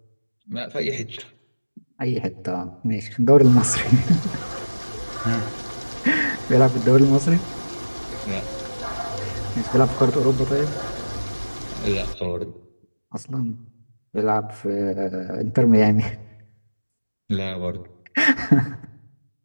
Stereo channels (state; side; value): inverted; both; correlation -1.00